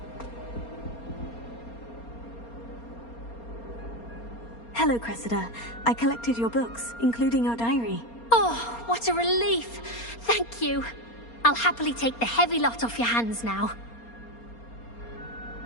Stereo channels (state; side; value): late; right; 4.3 ms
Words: Hello, Cressida. I collected your books, including your diary. Oh, what a relief! Thank you. I'll happily take the heavy lot off your hands now.